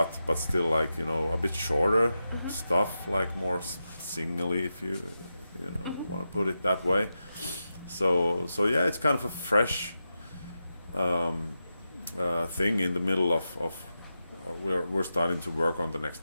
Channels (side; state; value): both; inverted; correlation -0.89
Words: still like a bit shorter stuff, like more singly, if you want to put it that way. So yeah, it's kind of a fresh thing in the middle of we're starting to work on the